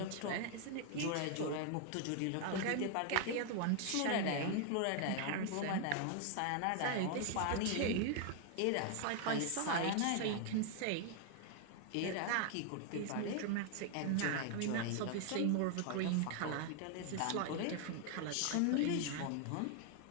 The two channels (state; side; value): different; both; correlation 0.00